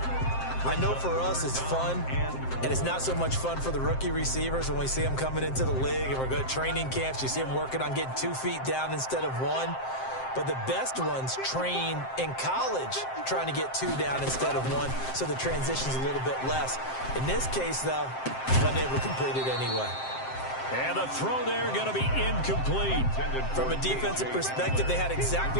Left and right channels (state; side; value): late; right; 7.6 ms